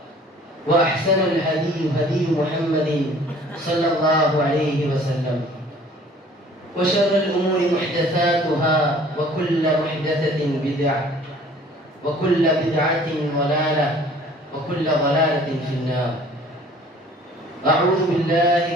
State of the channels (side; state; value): both; normal; correlation 0.52